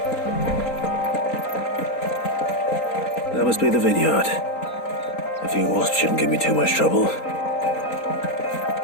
must be the vineyard. A few wasps shouldn't give me too much trouble.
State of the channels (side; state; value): right; late; 3.8 ms